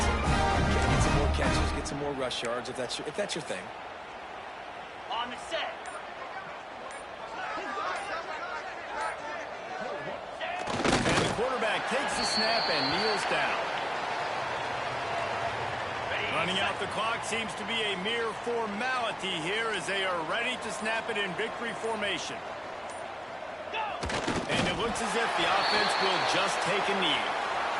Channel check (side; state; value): both; identical; correlation 1.00